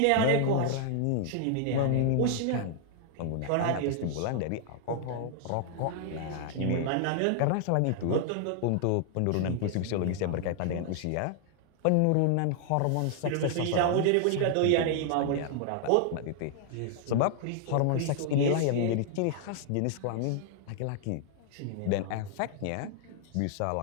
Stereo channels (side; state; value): both; different; correlation 0.00